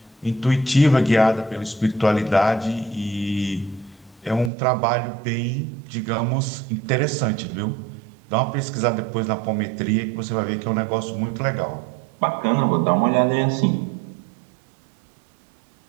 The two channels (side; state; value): left; drops out; at 4.5 s